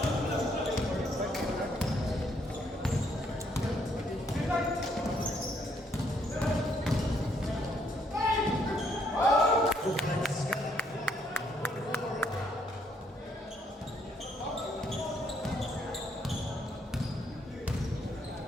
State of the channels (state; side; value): normal; both; correlation 0.71